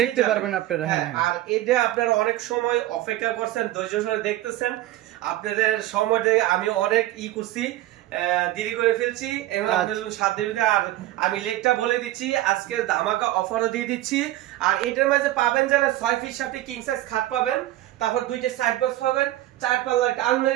দেখতে পারবেন আপনারা। হ্যাঁ, আর এটা আপনারা অনেক সময় অপেক্ষা করছেন, ধৈর্য সহকারে দেখতেছেন। আপনাদের সময়টা আমি অনেক করছি, দেরি করে ফেলছি, এবং আপনাদের সাথে আর আমি লেটটা বলে দিচ্ছি, আজকে ধামাকা অফারও দিয়ে দিচ্ছি। আর এটার মাঝে পাবেন যারা 6 ফিট সাথে কিং সাইজ খাট পাবেন, তারপর দুইটা সাইড বক্স পাবেন, 4 পাল্লার একটা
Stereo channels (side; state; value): left; quieter; 15.5 dB